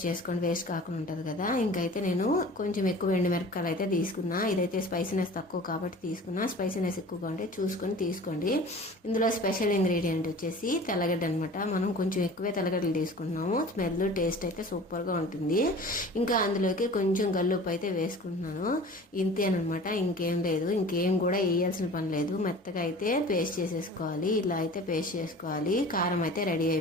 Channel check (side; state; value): both; normal; correlation 0.42